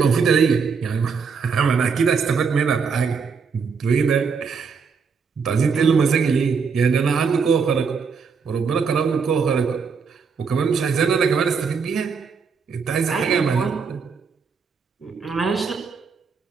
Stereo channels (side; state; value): left; quieter; 5.6 dB